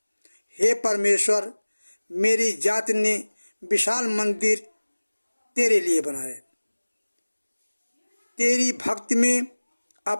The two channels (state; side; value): inverted; both; correlation -1.00